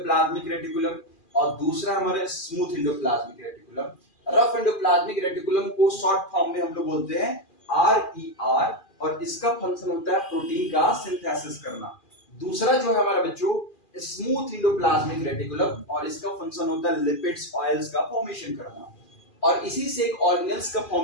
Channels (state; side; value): late; right; 2.4 ms